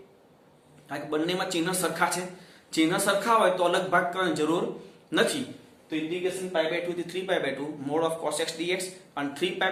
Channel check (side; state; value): both; identical; correlation 1.00